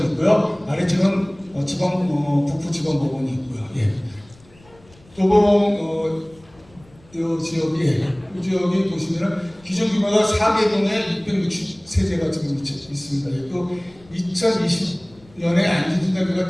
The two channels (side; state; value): left; noise; rumble, 27 dB below the sound